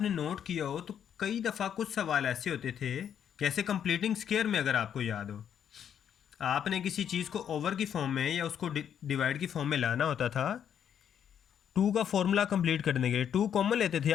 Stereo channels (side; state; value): right; quieter; 8.8 dB